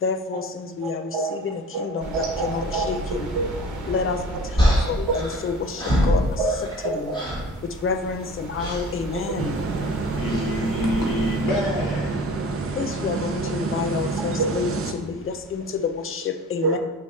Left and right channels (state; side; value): normal; both; correlation 0.42